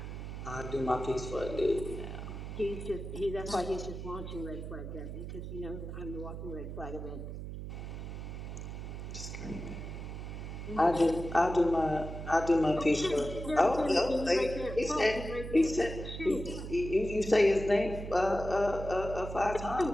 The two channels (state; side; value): noise; right; hum, 8 dB below the sound